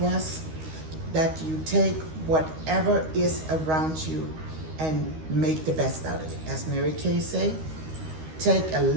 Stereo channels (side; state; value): left; late; 13 ms